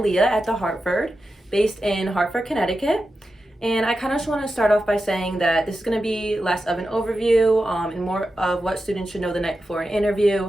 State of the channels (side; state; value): both; normal; correlation 0.91